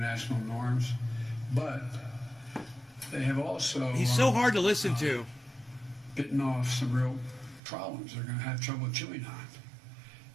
norms, but they have also. He's so hard to listen to. Bitten off some real problems they're going to have trouble chewing on.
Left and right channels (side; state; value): left; drops out; at 7.6 s